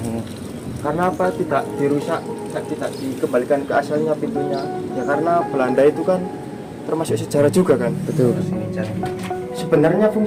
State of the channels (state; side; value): identical; both; correlation 1.00